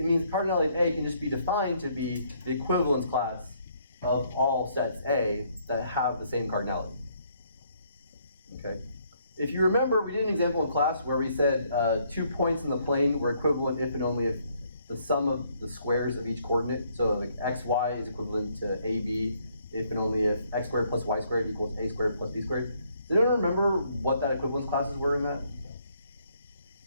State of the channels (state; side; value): inverted; both; correlation -0.68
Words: means cardinality of A can just be defined to be the equivalence class of all sets A that have the same cardinality. Okay? If you remember, we did an example in class where we said 2 points in the plane were equivalent if and only if the sum of the squares of each coordinate, so like xy is equivalent to ab if and only if x squared plus y squared equals a squared plus b squared. Does anyone remember what that equivalence classes were in that?